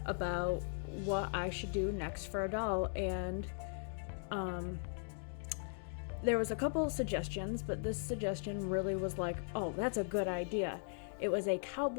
about what I should do next for a doll, and um, there was a couple suggestions, but this suggestion really was like, oh, that's a good idea. It was a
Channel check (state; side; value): silent; right; digital silence